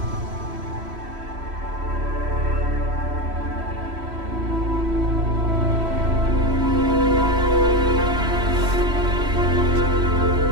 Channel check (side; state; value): left; late; 3.1 ms